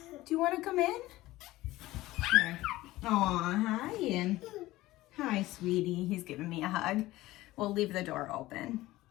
Do you want to come in? Here. Aw, hi, and hi, sweetie. He's giving me a hug. We'll leave the door open.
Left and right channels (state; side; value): quieter; right; 17.4 dB